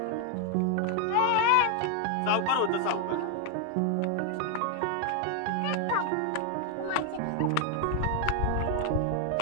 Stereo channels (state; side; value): different; both; correlation 0.00